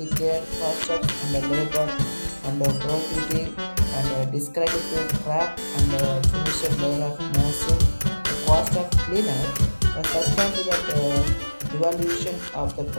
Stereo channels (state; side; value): inverted; both; correlation -1.00